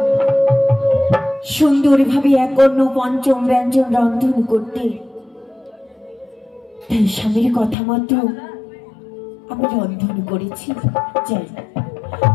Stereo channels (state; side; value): drops out; right; at 7.8 s